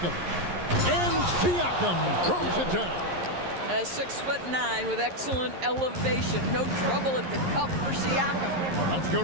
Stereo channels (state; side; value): late; left; 11 ms